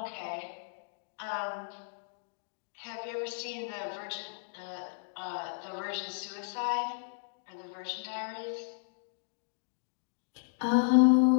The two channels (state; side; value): silent; right; digital silence